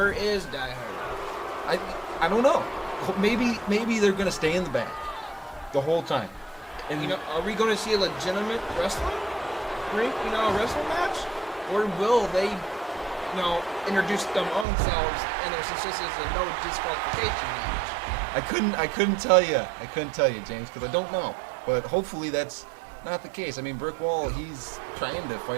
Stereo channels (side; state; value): left; drops out; at 14.7 s